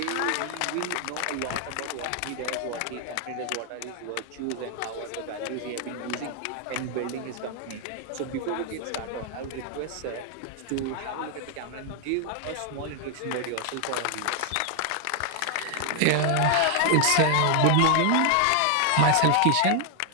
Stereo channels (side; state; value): both; different; correlation 0.00